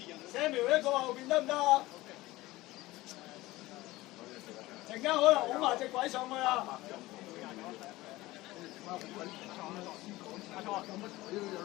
Samuel 一個後邊得唔得啊？陣間可能拱埋隻鬼上去啊！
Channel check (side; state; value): right; quieter; 18.8 dB